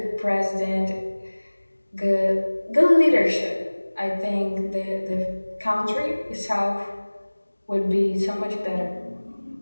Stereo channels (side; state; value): both; inverted; correlation -1.00